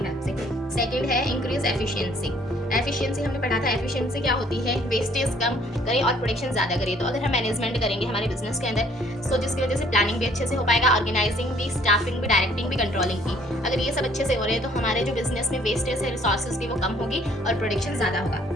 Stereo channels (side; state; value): both; normal; correlation 0.60